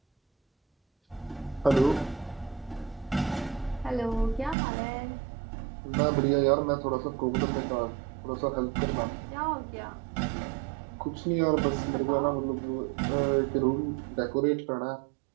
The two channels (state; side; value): drops out; left; at 4.5 s